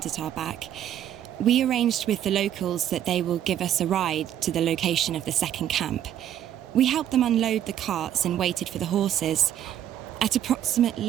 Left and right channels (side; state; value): left; quieter; 10.9 dB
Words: at our back. We arranged with the locals that they will give us a ride to the location of the second camp. We helped them unload the carts and waited for the horses. At